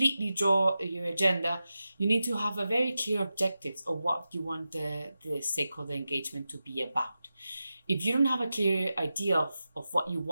draw your agenda? You need to have a very clear objectives of what you want the stakeholder engagement to be about. If you don't have a clear idea of what you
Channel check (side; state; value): both; inverted; correlation -0.92